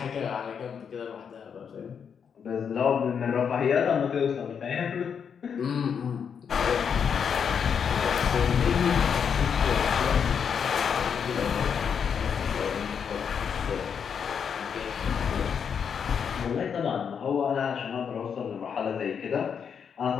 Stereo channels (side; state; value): right; quieter; 7.1 dB